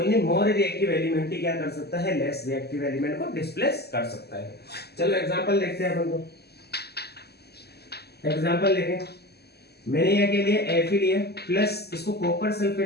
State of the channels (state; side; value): late; right; 0.47 ms